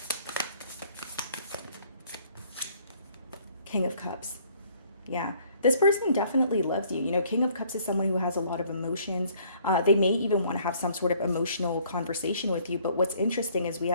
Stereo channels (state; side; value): inverted; both; correlation -0.60